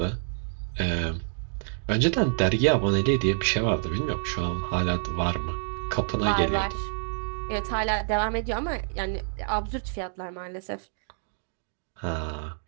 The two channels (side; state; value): left; silent; digital silence